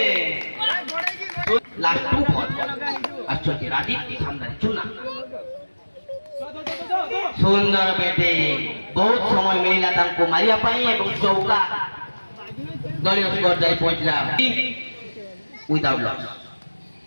লাস্ট 2 বল আসছে রাজীব সামনে চুনা সুন্দর ব্যাটিং বহুত সময় মিলিলা তাଙ୍କୁ মারিয়া পাই এবং চৌকা দলীয় স্কোর যাই পৌঁছলা উইদাউট লস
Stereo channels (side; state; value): both; inverted; correlation -1.00